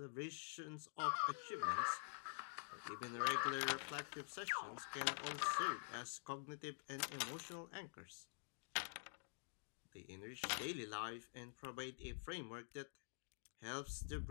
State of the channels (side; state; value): right; silent; digital silence